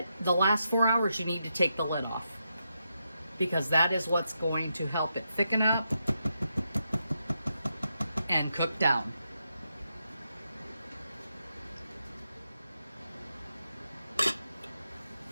the last 4 hours you need to take the lid off, because that is what's going to help it thicken up and cook down.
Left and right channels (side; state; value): both; inverted; correlation -0.84